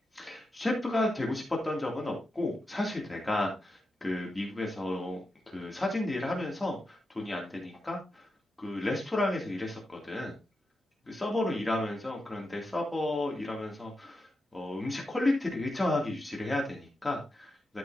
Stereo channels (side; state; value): both; normal; correlation 0.88